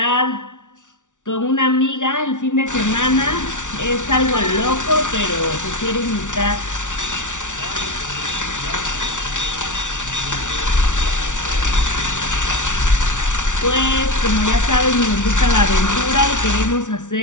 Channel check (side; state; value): right; late; 0.86 ms